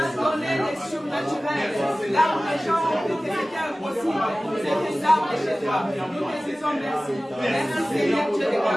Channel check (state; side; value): normal; both; correlation 0.97